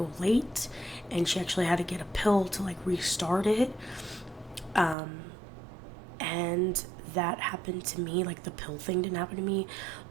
late, and she actually had to get a pill to like restart it. And that happened to me. Like the pill thing didn't happen to me,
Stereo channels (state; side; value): drops out; left; at 5.0 s